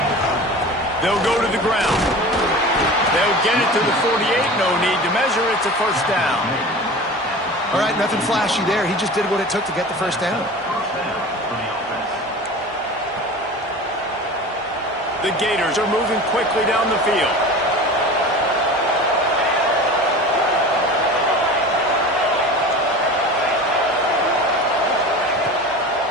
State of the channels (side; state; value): both; normal; correlation 0.36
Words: They'll go to the ground. They'll get it to the 48. No need to measure. It's a first down. All right, nothing flashy there. He just did what it took to get the first down. The Gators are moving quickly down the field.